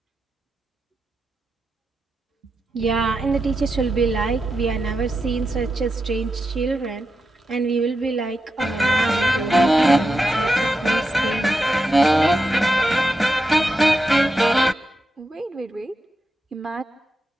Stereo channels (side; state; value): both; normal; correlation 0.88